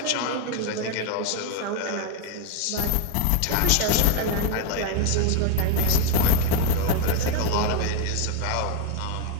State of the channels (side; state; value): both; different; correlation 0.00